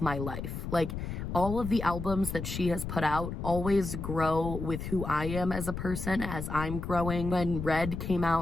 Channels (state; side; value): noise; left; rumble, 6 dB below the sound